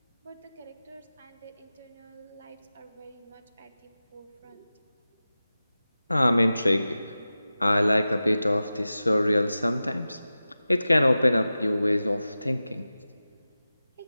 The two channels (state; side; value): inverted; both; correlation -0.95